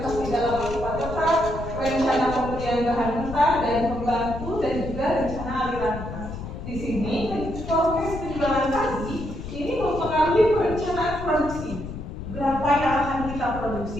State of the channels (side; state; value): left; noise; rumble, 8 dB below the sound